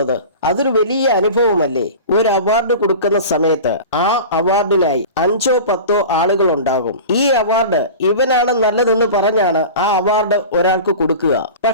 അതൊരു വലിയ അനുഭവമല്ലേ. ഒരു അവാർഡ് കൊടുക്കുന്ന സമയത്ത് ആ അവാർഡിനായി 5 or 10 ആളുകൾ ഉണ്ടാകും. ഈ അവാർഡ് ഇവനാണ് നല്ലതെന്ന് പറഞ്ഞാണ് ആ അവാർഡ് ഒരാൾക്ക് കൊടുക്കുക.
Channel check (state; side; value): inverted; both; correlation -0.34